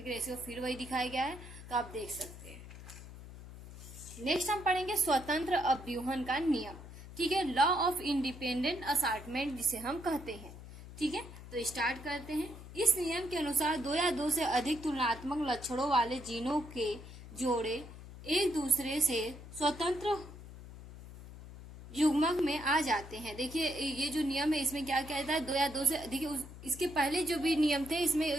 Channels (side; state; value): left; noise; hum, 14 dB below the sound